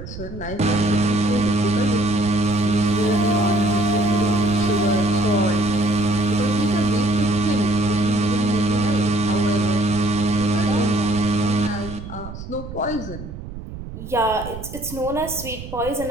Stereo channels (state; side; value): noise; right; rumble, 12 dB below the sound